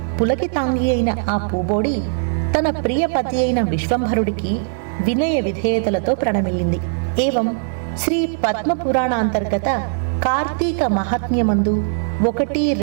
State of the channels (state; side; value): silent; left; digital silence